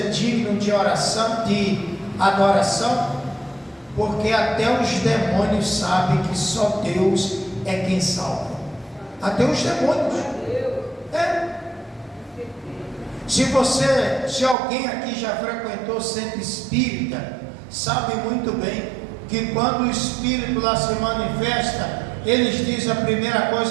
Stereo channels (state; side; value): drops out; left; at 14.6 s